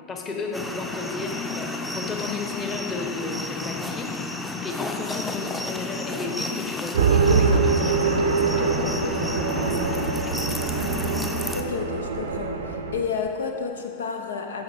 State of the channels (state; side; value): normal; both; correlation -0.18